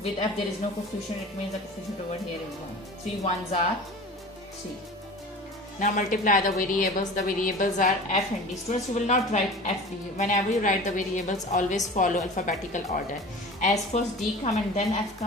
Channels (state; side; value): normal; both; correlation 0.38